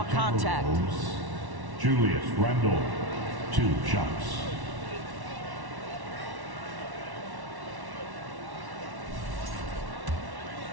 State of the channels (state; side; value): late; left; 1.1 ms